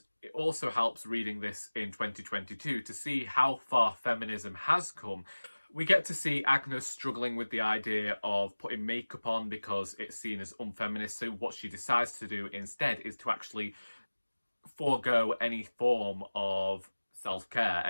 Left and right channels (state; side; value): inverted; both; correlation -1.00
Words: it also helps reading this in 2022 to see how far feminism has come. We get to see Agnes struggling with the idea of putting makeup on because it's seen as unfeminist. So what she decides to do instead is to actually forego any form of self-care,